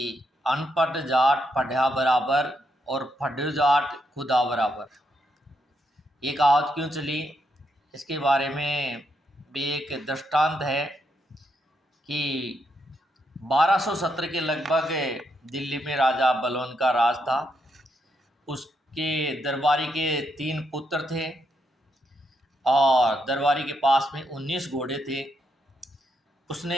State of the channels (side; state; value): both; normal; correlation 0.79